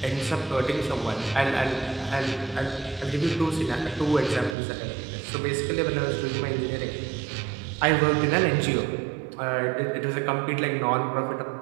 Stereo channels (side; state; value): left; drops out; at 4.5 s